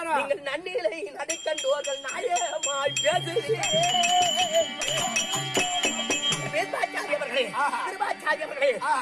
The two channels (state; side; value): identical; both; correlation 1.00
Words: நீங்கள் நன்னிலை நடைக்கண்டோர்கள் நாயமாய்